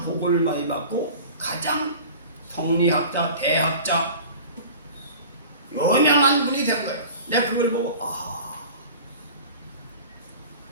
복을 많이 받고 가장 성리학자, 대학자 유명한 분이 된 거예요. 내가 그걸 보고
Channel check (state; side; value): inverted; both; correlation -0.40